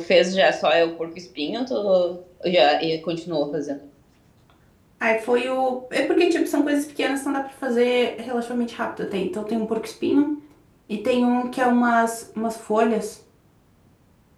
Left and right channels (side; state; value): both; identical; correlation 1.00